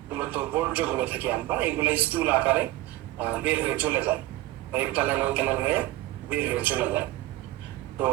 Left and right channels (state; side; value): quieter; left; 16.8 dB